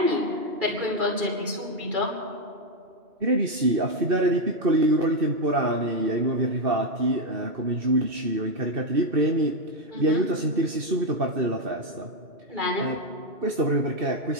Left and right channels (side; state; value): left; late; 2.6 ms